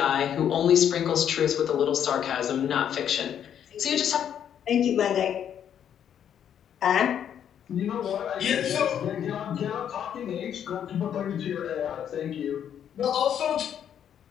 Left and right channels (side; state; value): right; quieter; 9.2 dB